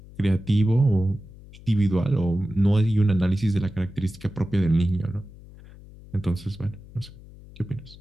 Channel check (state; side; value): noise; left; hum, 19 dB below the sound